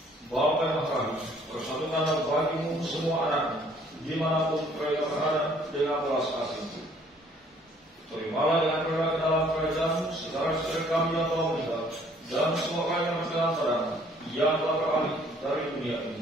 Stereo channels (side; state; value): both; normal; correlation 0.60